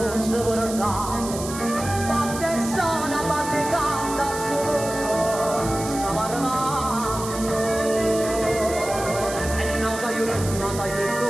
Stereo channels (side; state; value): right; noise; hiss, 10 dB below the sound